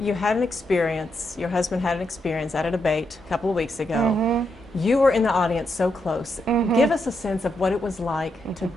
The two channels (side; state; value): both; normal; correlation 0.82